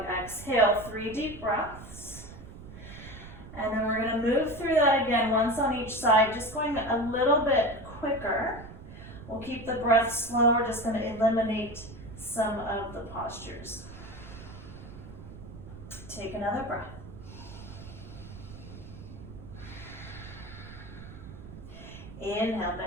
exhale, 3 deep breaths. And then we're gonna move through that again, once on each side, just going a little bit quicker. We'll keep the breath slow, we're just gonna eliminate some of the postures. Take another breath. Inhale,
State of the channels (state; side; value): noise; right; rumble, 14 dB below the sound